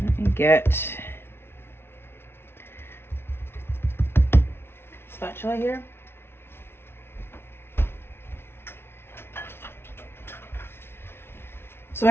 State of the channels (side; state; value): right; late; 0.12 ms